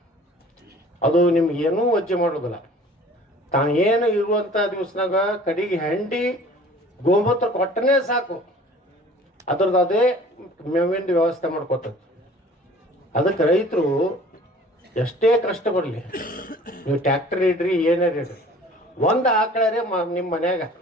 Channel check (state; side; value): normal; both; correlation 0.48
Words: ಅದು ನಿಮ್ಗೆ ಏನೂ ವಜ್ಜೆ ಮಾಡೋದಿಲ್ಲ. ತಾನು ಏನು ಇರುವಂಥ ದಿವಸನಾಗ ಕಡೆಗೆ ಹೆಂಡಿ ಗೋಮೂತ್ರ ಕೊಟ್ಟನೇ ಸಾಕು, ಅದ್ರದ್ದು ಅದೇ ಮೇವಿಂದ ವ್ಯವಸ್ಥೆ ಮಾಡ್ಕೊತದ. ಅದಕ್ಕೆ ರೈತರು ಎಷ್ಟೇ ಕಷ್ಟ ಬರಲಿ, ನೀವು ಟ್ಯಾಕ್ಟರ್ ಇಡ್ರಿ ಏನಾರು ಇಡ್ರಿ, ಒಂದು ಆಕಳರೇ ನಿಮ್ಮ ಮನ್ಯಾಗ